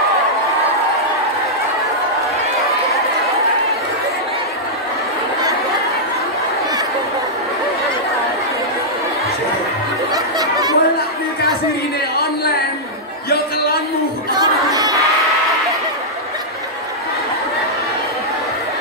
Bolak nikah siri ini online, yo kelonmu.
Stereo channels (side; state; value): both; normal; correlation -0.08